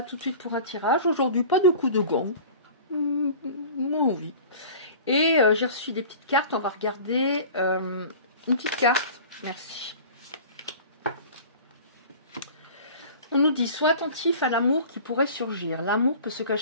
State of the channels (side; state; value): both; inverted; correlation -0.40